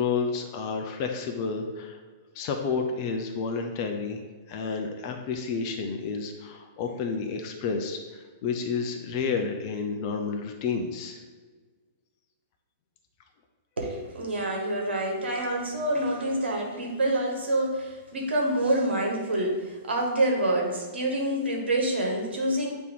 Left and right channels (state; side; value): inverted; both; correlation -0.43